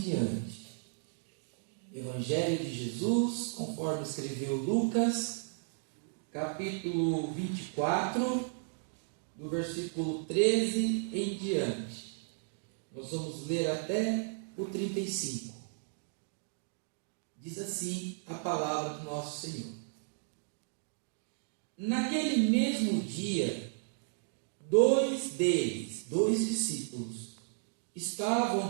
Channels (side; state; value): left; silent; digital silence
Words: Evangelho de Jesus, conforme escreveu Lucas, capítulo 24, do versículo 13 em diante. Nós vamos ler até o 35. Diz assim a palavra do nosso Senhor. Naquele mesmo dia, dois discípulos, estavam